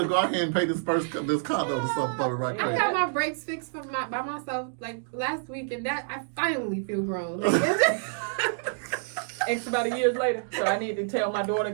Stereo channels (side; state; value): left; silent; digital silence